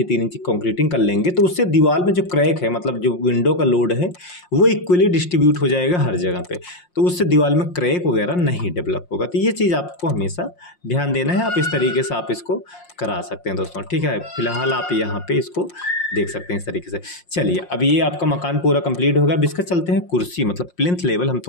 3 इंची कंक्रीटिंग कर लेंगे तो उससे दीवार में जो क्रैक है, मतलब जो विंडो का लोड है, वो इक्वली डिस्ट्रीब्यूट हो जाएगा हर जगह पे, तो उससे दीवार में क्रैक वगैरह नहीं डेवलप होगा। तो ये चीज़ आपको हमेशा ध्यान देना है। आप इस तरीके से आप इसको करा सकते हैं दोस्तों। ठीक है, फिलहाल आप यहाँ पे इसको देख सकते हैं इस तरीके से। चलिए, अब ये आपका मकान पूरा कंप्लीट होगा। अब इसका चलते हैं कुर्सी, मतलब प्लिंथ लेवल हम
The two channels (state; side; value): late; right; 5.6 ms